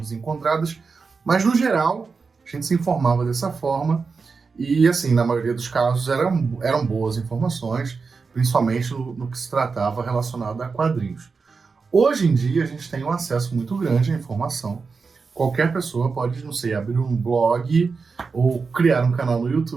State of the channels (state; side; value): quieter; left; 4.8 dB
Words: mas no geral a gente se informava dessa forma e, assim, na maioria dos casos eram boas informações, principalmente no que se tratava relacionado a quadrinhos. Hoje em dia a gente tem um acesso muito grande à informação. Qualquer pessoa pode, não sei, abrir um blog ou criar um canal no